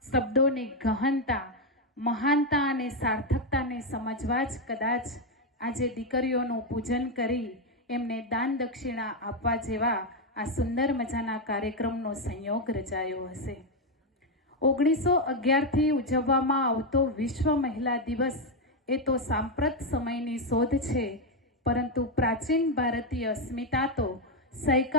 ગહનતા, મહાનતા અને સાર્થકતાને સમજવા જ કદાચ આજે દીકરીઓનું પૂજન કરી એમને દાન દક્ષિણા આપવા જેવા આ સુંદર મજાના કાર્યક્રમનો સંયોગ રચાયો હશે। 1911થી ઉજવવામાં આવતો વિશ્વ મહિલા દિવસ એ તો સાંપ્રત સમયની શોધ છે, પરંતુ પ્રાચીન ભારતીય અસ્મિતા તો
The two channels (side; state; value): both; normal; correlation 0.04